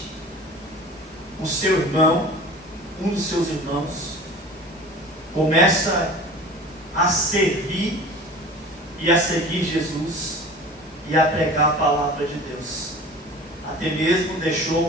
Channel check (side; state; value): both; normal; correlation 0.40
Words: o seu irmão, um dos seus irmãos, começa a servir e a seguir Jesus e a pregar a palavra de Deus. Até mesmo deixou